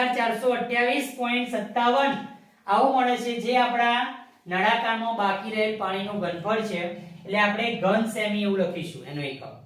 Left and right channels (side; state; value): both; identical; correlation 1.00